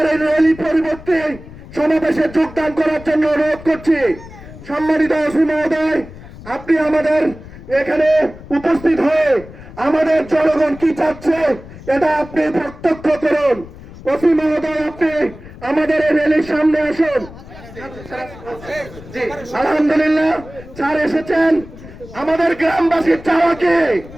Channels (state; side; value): noise; left; rumble, 17 dB below the sound